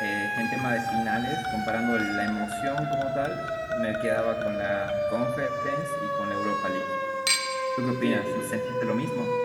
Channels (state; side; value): identical; both; correlation 1.00